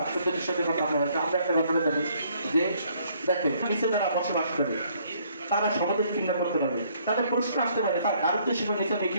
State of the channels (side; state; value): both; inverted; correlation -0.65